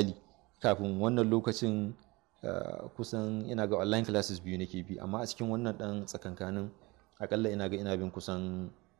kafin wannan lokacin kusan ina ga online classes 2 nake bi, amma a cikin wannan ɗan tsakankanin akalla ina bin kusan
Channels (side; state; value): left; quieter; 23.7 dB